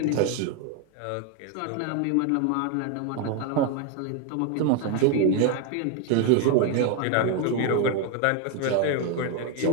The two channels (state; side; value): different; both; correlation 0.01